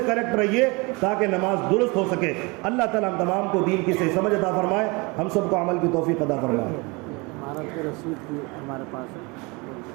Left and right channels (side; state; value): left; quieter; 27.1 dB